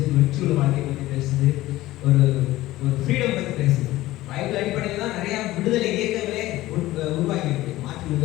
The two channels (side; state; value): right; quieter; 16.8 dB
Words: வெற்றியுள்ள வாழ்க்கையை பற்றி பேசுது, ஒரு ஃப்ரீடம் பற்றி பேசுது. பைபிள் அடிப்படையில் தான் நிறைய விடுதலை இயக்கங்களே உருவாக்கி இருக்கு. மார்ட்டின்